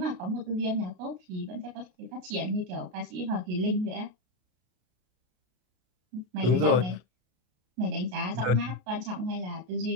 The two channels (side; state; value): left; late; 33 ms